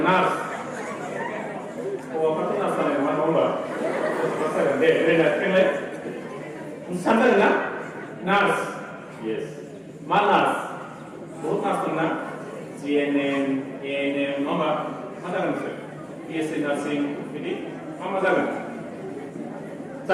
nurse. Oh, apa tu nurse jaga? Mana nombor? Nurse jaga. Deh, nak kenal? Sampai na? Nurse. Yes. Mana nurse? बहुत nurse tu na. GNM, ANM, nombor. Mana nurse? PSC nursing, ini apa jalan?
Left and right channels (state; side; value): identical; both; correlation 1.00